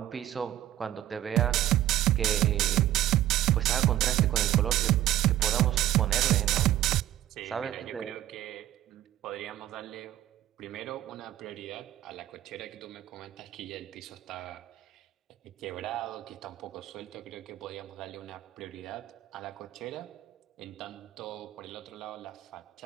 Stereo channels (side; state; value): left; quieter; 13.4 dB